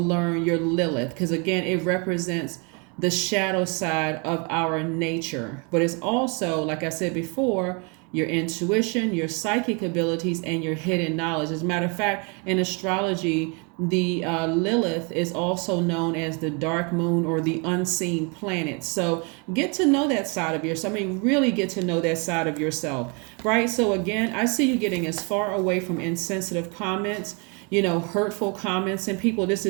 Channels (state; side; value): quieter; left; 33.5 dB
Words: your Lilith, because again, it represents the shadow side of our nature. But it's also, like I said before, your intuition, your psychic abilities, and your hidden knowledge. As a matter of fact, in astrology, the Lilith is also known as the dark moon or the unseen planet. So get to know that side of yourself. I mean, really get to know that side of yourself, right? So again, I see you getting as far away from insensitive comments, hurtful comments, and people. This